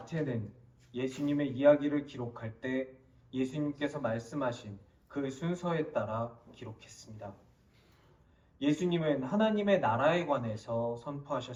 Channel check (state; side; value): identical; both; correlation 1.00